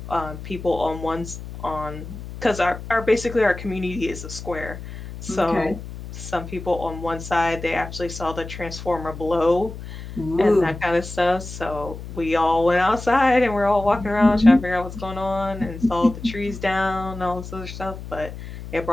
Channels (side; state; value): left; noise; hum, 11 dB below the sound